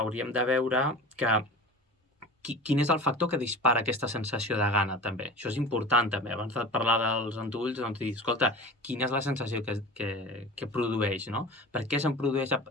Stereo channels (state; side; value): normal; both; correlation 0.35